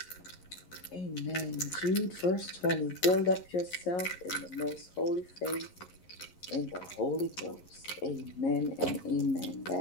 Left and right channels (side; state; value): right; late; 11 ms